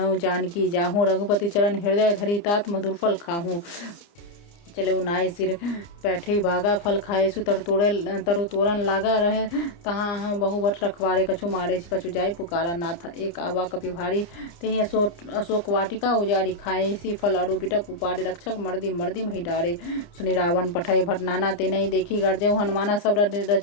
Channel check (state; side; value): late; right; 29 ms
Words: जानकी जाहूँ रघुपति चरण हृदय धरी तात मधुर फल खाहूँ चले उनाई सिर बैठे भागा फल खाए सु तरु तोरन लागा रहे तहाँ बहुवट रखवारे कछु मारे कछु जाय पुकारा नाथ एक आवा कपि भारी तेहि अशोक वाटिका उजाड़ी खाए सी फल अरु बिटप उपारे रक्षक मर्दी मही डारे सुनि रावण पठय भट नाना ते नहीं देखी गर्जय हनुमाना सब